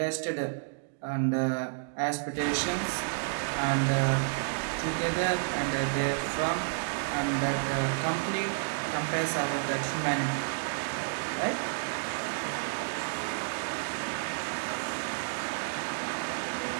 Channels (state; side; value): silent; left; digital silence